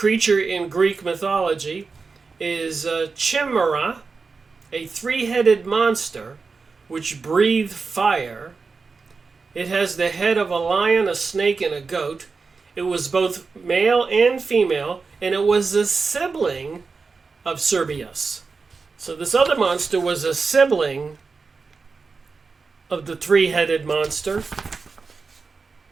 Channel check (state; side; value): quieter; left; 4.6 dB